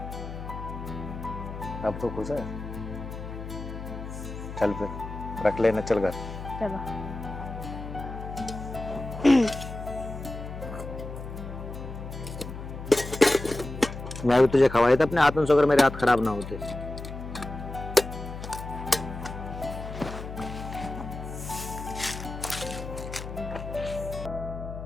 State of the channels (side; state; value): left; noise; hum, 9 dB below the sound